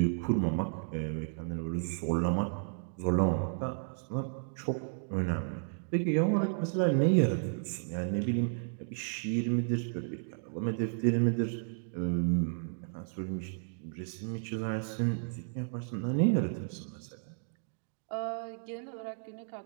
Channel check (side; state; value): left; silent; digital silence